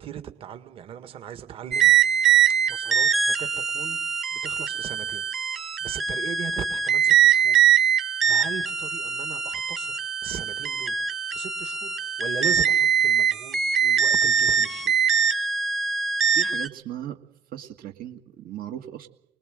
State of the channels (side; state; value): left; quieter; 7.9 dB